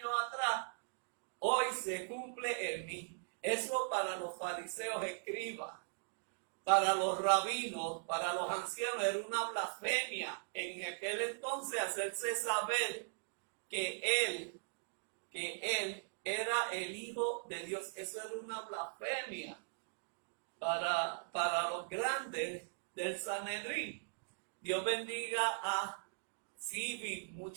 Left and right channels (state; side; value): silent; left; digital silence